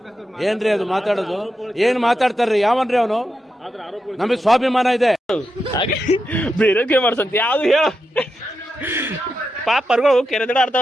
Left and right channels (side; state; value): both; normal; correlation 0.87